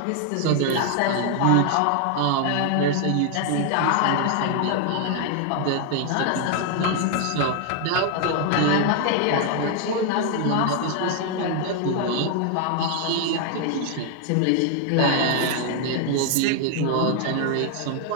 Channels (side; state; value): both; different; correlation 0.00